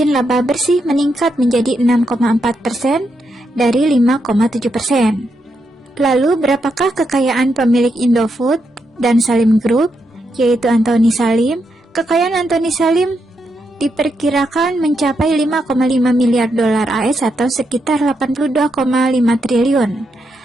laba bersih meningkat menjadi 6,4% dari 5,7%. Lalu berapakah kekayaan pemilik Indofood dan Salim Group, yaitu Antoni Salim? Kekayaan Antoni Salim diperkirakan mencapai 5,5 miliar dolar AS atau sekitar 82,5 triliun,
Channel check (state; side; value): normal; both; correlation 0.82